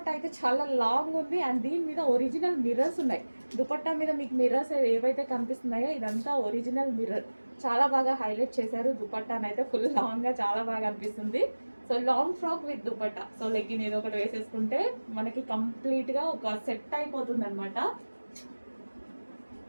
అయితే చాలా లాంగ్ ఉంది. అండ్ దీని మీద ఒరిజినల్ మిర్రర్స్ ఉన్నాయి. దుపట్టా మీద మీకు మిర్రర్స్ ఏవైతే కనిపిస్తున్నాయో ఇదంతా ఒరిజినల్ మిర్రర్. చాలా బాగా హైలైట్ చేశారు. దుపట్టాని అయితే ఫుల్ లాంగ్గా చాలా బాగా అనిపిస్తుంది. So long frock with dupatta. So legging ఏదో ఒకటి వేసేసుకుంటే మనకి కంప్లీట్గా ఒక సెట్ అయిపోతుంది అనమాట.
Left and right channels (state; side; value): inverted; both; correlation -1.00